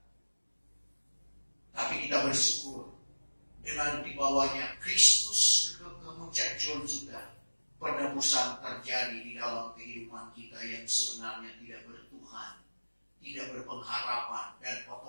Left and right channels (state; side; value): inverted; both; correlation -1.00